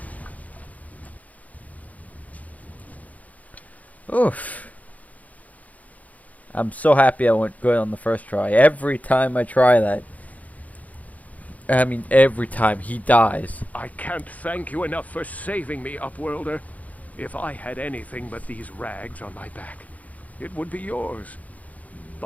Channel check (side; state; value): right; late; 0.074 ms